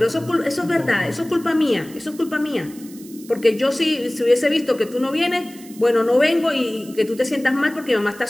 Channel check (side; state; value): right; noise; hiss, 20 dB below the sound